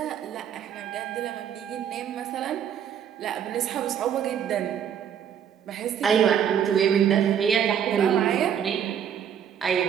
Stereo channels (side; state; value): left; quieter; 8.7 dB